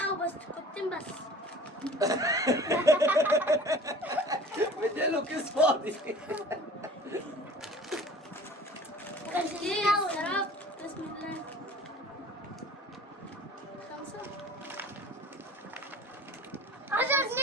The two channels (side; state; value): both; normal; correlation 0.45